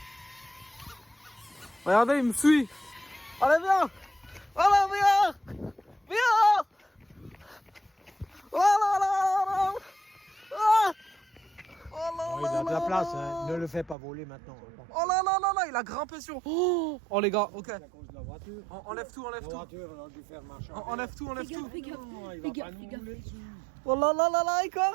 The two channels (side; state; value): left; drops out; at 14.0 s